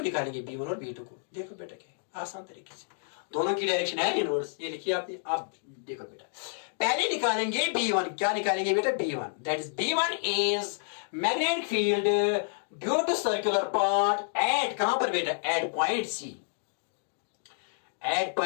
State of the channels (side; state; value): right; silent; digital silence